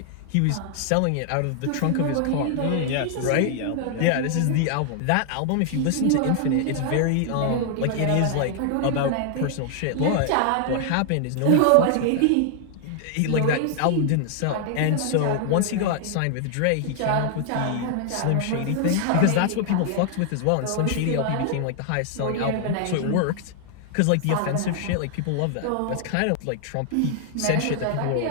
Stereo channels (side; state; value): both; different; correlation 0.00